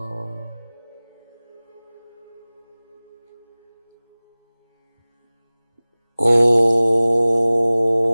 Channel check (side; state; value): both; inverted; correlation -0.99